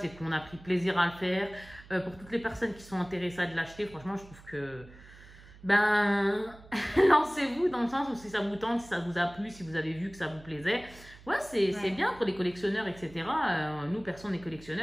qu'on a pris plaisir à le faire. Pour toutes les personnes qui sont intéressées à de l'acheter, franchement, je trouve que... Ben, lancez-vous dans le sens où si ça vous tente, si ça vous a plu, si vous avez vu que ça vous plaisait. Ouais, c'est bien pour les collectionneurs, etc. Nous, personne n'est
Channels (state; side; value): noise; right; hum, 21 dB below the sound